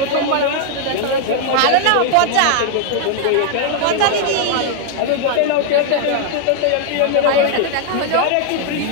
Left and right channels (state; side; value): different; both; correlation 0.00